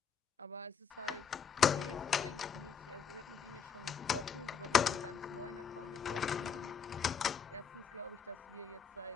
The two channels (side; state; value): right; quieter; 6.7 dB